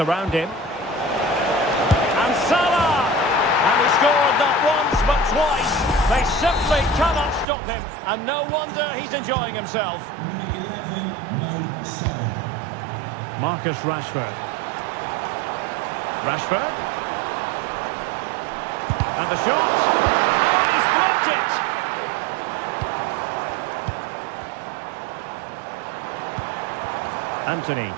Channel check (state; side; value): drops out; left; at 7.5 s